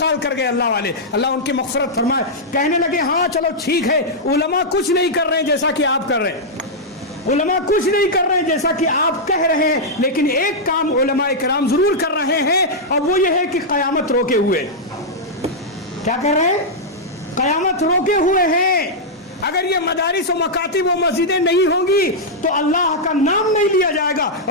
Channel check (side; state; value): both; normal; correlation -0.07